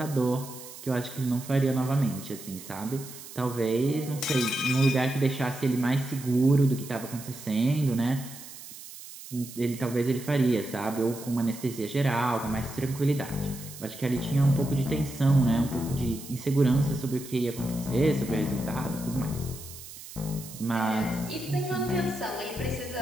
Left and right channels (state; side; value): noise; right; hiss, 14 dB below the sound